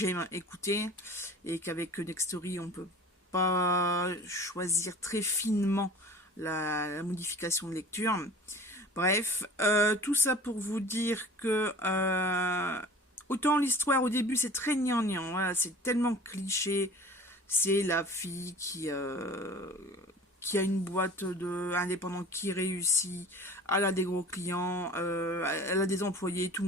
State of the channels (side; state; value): both; normal; correlation 0.42